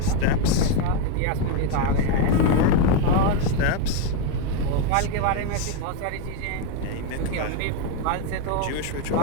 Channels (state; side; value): different; both; correlation 0.02